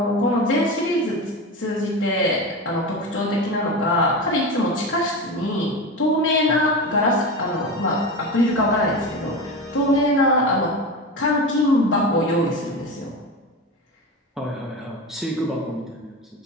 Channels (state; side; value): normal; both; correlation 0.24